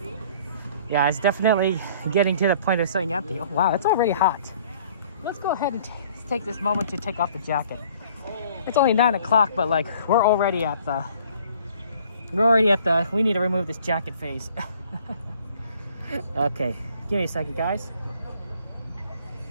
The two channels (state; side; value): inverted; both; correlation -0.55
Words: Yeah, it's definitely getting to the point of saying empty. Oh, wow, it's already hot. Let's go ahead and take this moment to take off the jacket. It's only 9 o'clock, but like we're already at the we need to remove this jacket phase. Okay, give me a second, guys.